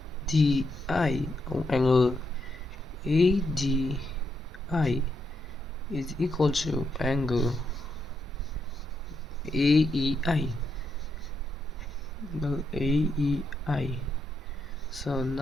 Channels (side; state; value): both; normal; correlation 0.80